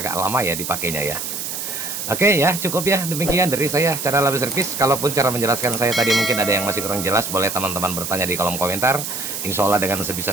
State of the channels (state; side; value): noise; right; hiss, 5 dB below the sound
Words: lama ya dipakainya ya. Oke ya, cukup ya, demikian dari saya cara Label Service. Kalaupun cara menjelaskan saya tadi mungkin ada yang masih kurang jelas, boleh teman-teman bertanya di kolom komentar. Insya Allah dengan